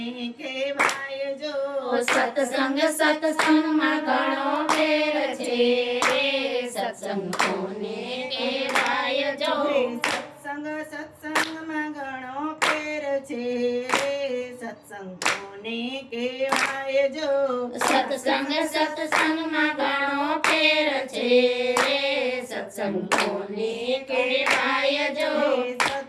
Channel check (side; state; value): both; identical; correlation 1.00